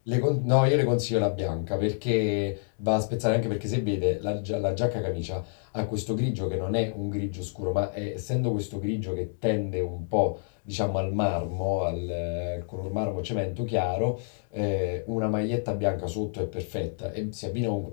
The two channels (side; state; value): right; silent; digital silence